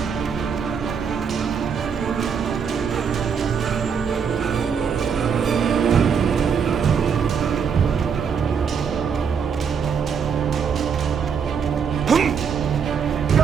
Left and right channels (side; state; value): left; quieter; 6.7 dB